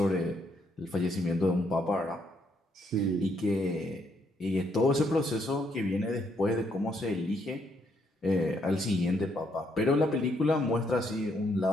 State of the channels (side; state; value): both; normal; correlation 0.73